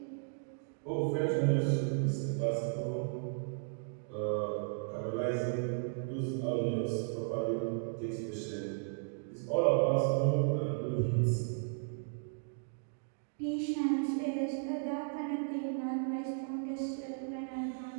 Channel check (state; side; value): silent; left; digital silence